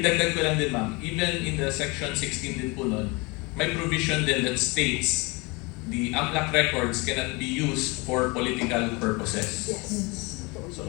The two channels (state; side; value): quieter; right; 26.9 dB